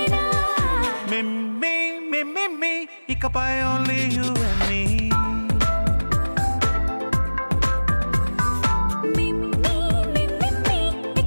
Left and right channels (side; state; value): both; inverted; correlation -1.00